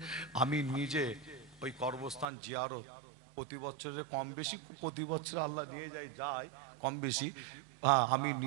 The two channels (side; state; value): left; drops out; at 2.2 s